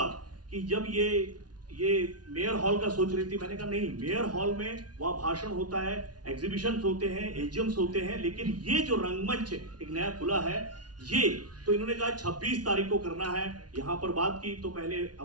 कि जब ये मेयर हॉल का सोच रही थी, मैंने कहा नहीं, मेयर हॉल में वहाँ भाषण होता है, एग्जीबिशंस होते हैं, एजीएम्स होते हैं, लेकिन ये जो रंगमंच एक नया खुला है, ये तो इन्होंने कहा 26 तारीख को करना है। यहाँ पर बात की तो पहले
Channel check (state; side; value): late; left; 0.69 ms